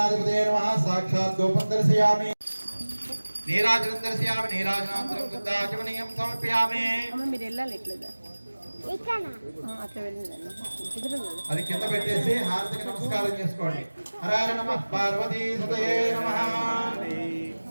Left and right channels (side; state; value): both; inverted; correlation -1.00